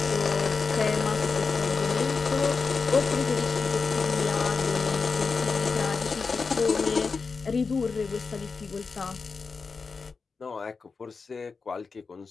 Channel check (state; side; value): quieter; right; 4.8 dB